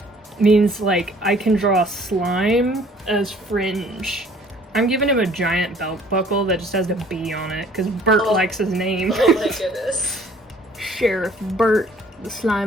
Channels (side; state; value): both; normal; correlation 0.56